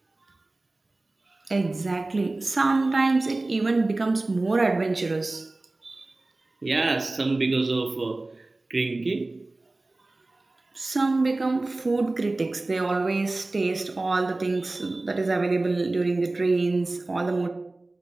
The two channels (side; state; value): left; quieter; 3.0 dB